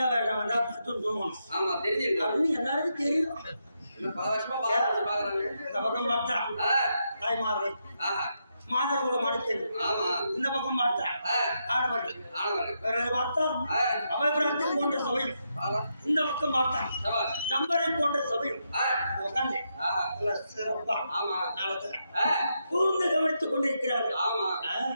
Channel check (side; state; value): both; inverted; correlation -0.82